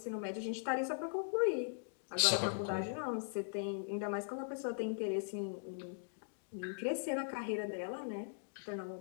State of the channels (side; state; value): right; silent; digital silence